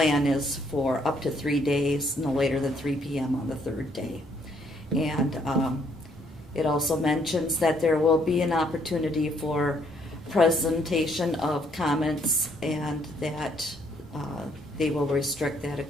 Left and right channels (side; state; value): both; normal; correlation 0.68